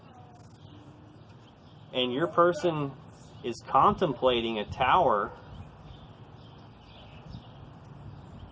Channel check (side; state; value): both; identical; correlation 1.00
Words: And your person is contemplating a Tower